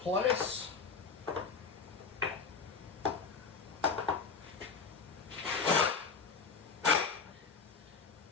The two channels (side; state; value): right; quieter; 5.2 dB